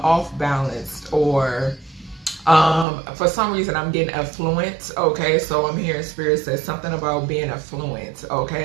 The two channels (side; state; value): left; drops out; at 2.9 s